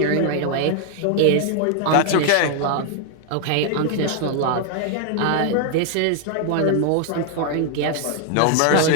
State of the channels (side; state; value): both; different; correlation 0.00